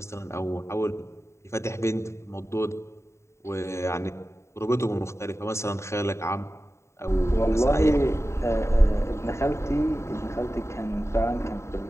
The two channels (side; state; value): right; late; 0.13 ms